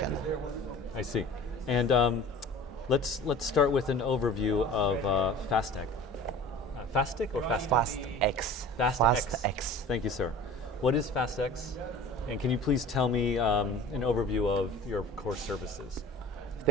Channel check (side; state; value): both; normal; correlation 0.41